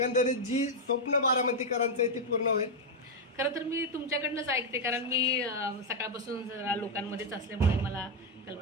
जी स्वप्न बारामतीकरांचं आहे ते पूर्ण होईल? खरं तर मी तुमच्याकडनंच ऐकते, कारण मी सकाळपासून जरा लोकांमध्येच असल्यामुळे मला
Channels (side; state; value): both; normal; correlation 0.01